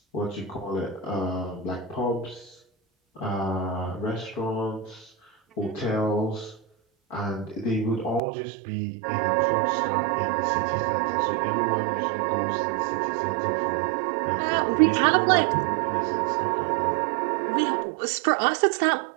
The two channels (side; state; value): left; drops out; at 8.2 s